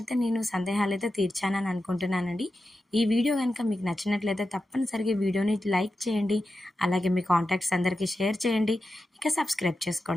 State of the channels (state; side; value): normal; both; correlation 0.91